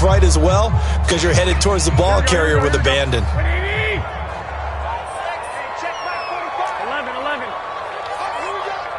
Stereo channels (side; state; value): both; identical; correlation 1.00